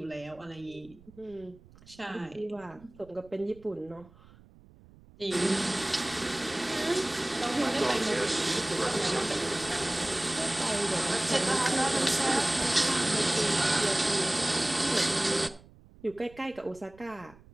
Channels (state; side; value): noise; right; rumble, 24 dB below the sound